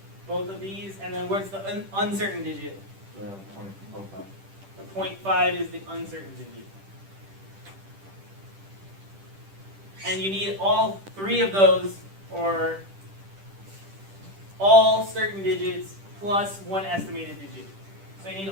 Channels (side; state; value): left; late; 10 ms